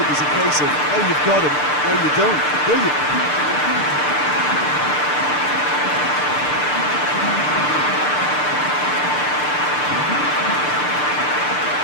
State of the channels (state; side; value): late; right; 6.7 ms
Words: was a case of, oh, you've got him, no, you don't. Brilliant.